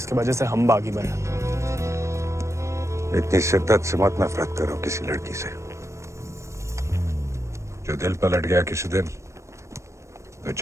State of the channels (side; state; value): left; late; 0.14 ms